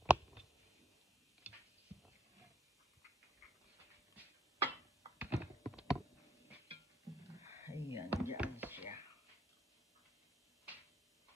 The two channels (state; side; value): normal; both; correlation 0.71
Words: Ayan, dyan siya.